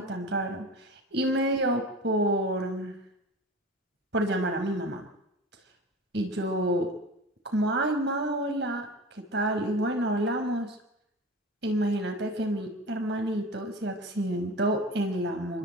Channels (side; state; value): both; normal; correlation 0.33